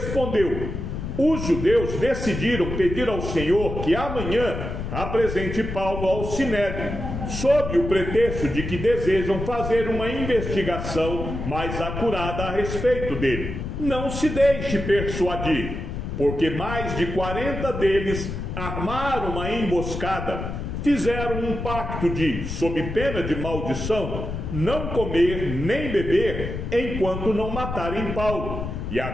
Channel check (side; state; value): left; noise; rumble, 5 dB below the sound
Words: os judeus decidiram pedir ao Senhor que amanhã apresente Paulo ao sinédrio, sob o pretexto de que desejam fazer uma investigação mais acurada a respeito dele. Não se deixe persuadir, porque mais de 40 deles armaram uma emboscada, fizeram um pacto de, sob pena de maldição, não comer nem beber enquanto não matarem Paulo. E